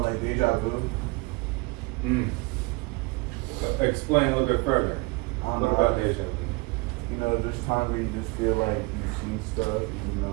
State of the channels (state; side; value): quieter; left; 26.0 dB